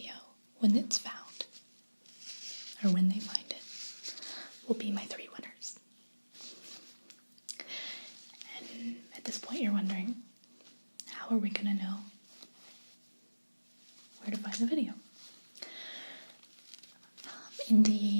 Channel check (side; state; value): both; inverted; correlation -1.00